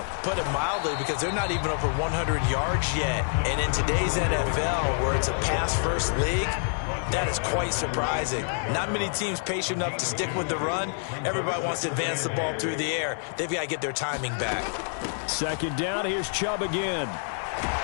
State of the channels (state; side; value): silent; right; digital silence